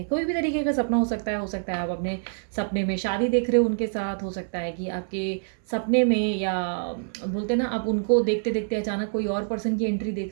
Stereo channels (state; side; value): silent; left; 60 dB below the other